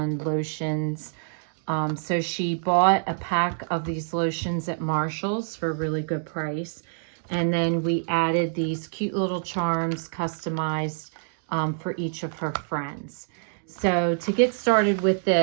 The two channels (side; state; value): left; silent; digital silence